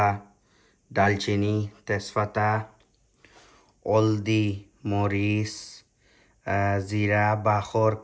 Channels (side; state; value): both; identical; correlation 1.00